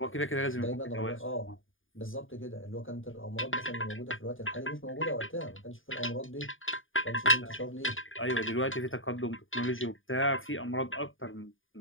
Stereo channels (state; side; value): late; right; 0.58 ms